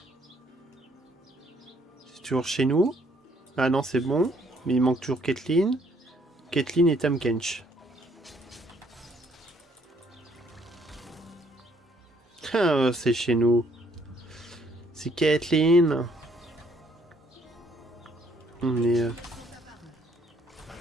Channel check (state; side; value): normal; both; correlation 0.66